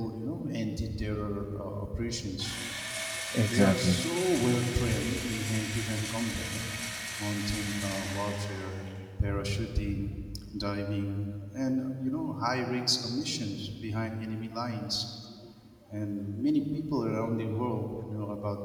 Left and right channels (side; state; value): both; identical; correlation 1.00